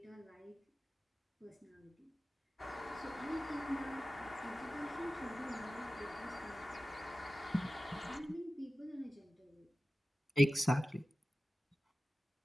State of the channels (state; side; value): normal; both; correlation 0.95